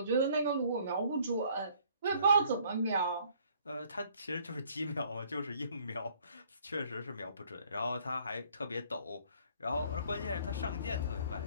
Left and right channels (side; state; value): both; inverted; correlation -0.60